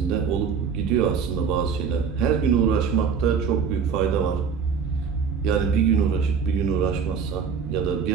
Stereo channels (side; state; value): left; quieter; 6.4 dB